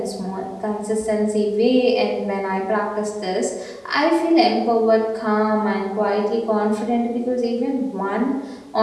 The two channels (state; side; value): identical; both; correlation 1.00